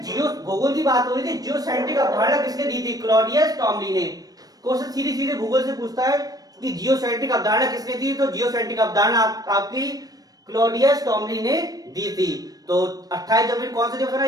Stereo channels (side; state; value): left; late; 0.18 ms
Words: भूगोल की बात हो रही थी। जियो साइंटिफिक अवधारणा किसने दी थी? क्लॉडियस टॉमली ने। क्वेश्चन सीधे सीधे भूगोल से पूछता है कि जियो साइंटिफिक अवधारणा किसने दी, तो जियो साइंटिफिक अवधारणा आपकी क्लॉडियस टॉमली ने दी थी। तो 28 जनवरी कौन सा दिवस